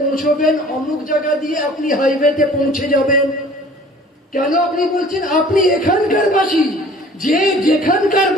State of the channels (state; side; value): normal; both; correlation 0.49